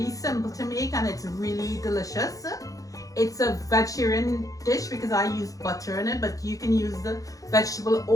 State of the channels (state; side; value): late; right; 0.17 ms